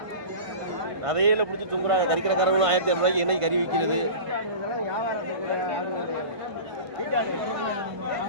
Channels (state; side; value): late; left; 1.5 ms